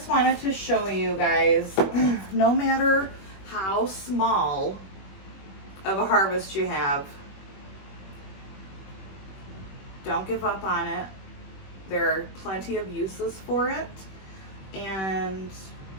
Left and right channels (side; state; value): right; late; 21 ms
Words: wanted to show you guys, no matter how small of a harvest you have, don't give up on it. There are plenty of uses for it, and